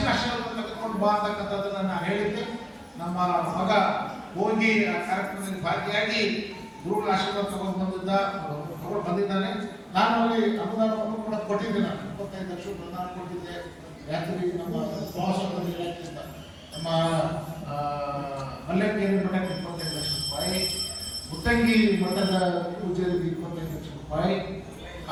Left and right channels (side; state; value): both; identical; correlation 1.00